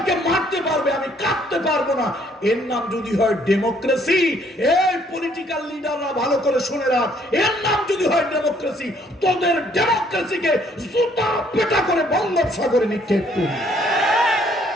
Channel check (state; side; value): normal; both; correlation 0.64